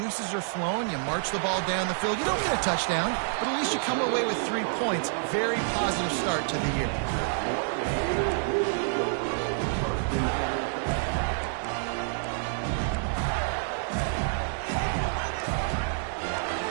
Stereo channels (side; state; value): left; silent; 59 dB below the other